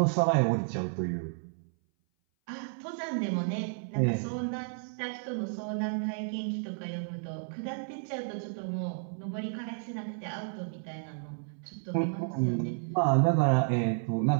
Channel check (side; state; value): left; silent; 57 dB below the other